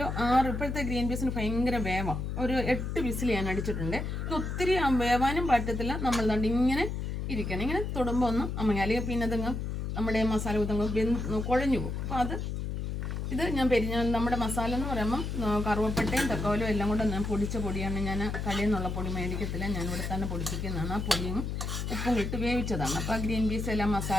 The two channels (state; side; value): noise; left; hum, 3 dB below the sound